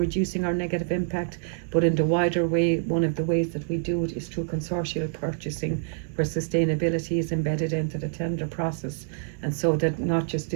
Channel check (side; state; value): left; silent; digital silence